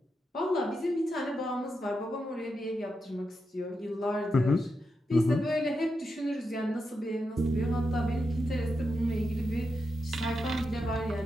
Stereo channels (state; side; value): normal; both; correlation 0.86